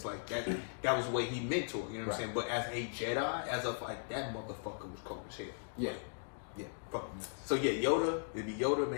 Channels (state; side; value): silent; right; digital silence